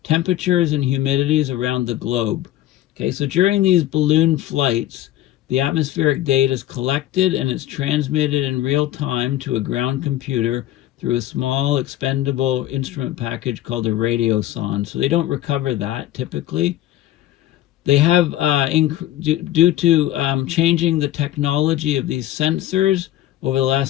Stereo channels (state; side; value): quieter; right; 13.6 dB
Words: temperatures and humidities around the globe. Okay, so during these balloon flights, the atmospheric data is collected and it's transmitted in real time to a ground computer through a small expendable instrument package called a radiosonde. So they don't recover that typically. They have, due to changing the technology of these sensors over the